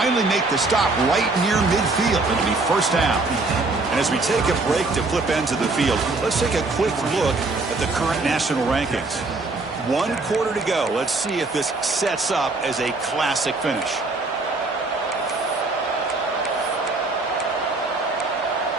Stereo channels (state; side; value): quieter; left; 3.4 dB